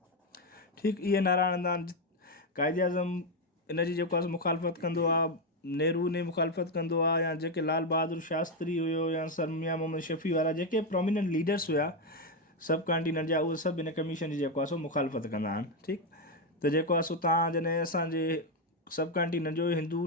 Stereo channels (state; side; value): normal; both; correlation 0.06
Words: ठीकु. इहे नारा हणंदा आहिनि. कायदे आज़म इन जी जेको आहे मुखालफ़त कंदो आहे, नेहरू ने मुखालफ़त कंदो आहे, या जेके लाल बहादुर शास्त्री हुयो या सर मियां मोहम्मद शफ़ी वारा जेके प्रोमिनेंट लीडर्स हुया सब कॉन्टिनेंट जा, उहे सभु इन कमीशन जी जेको आहे सो मुखालफ़त कंदा आहिनि. ठीकु. त जेको आहे सो तव्हां जॾहिं असांजे सब कॉन्टिनेंट जो हिंदू